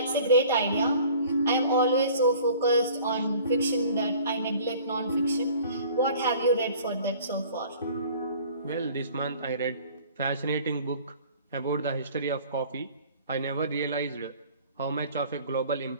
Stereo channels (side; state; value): both; inverted; correlation -0.49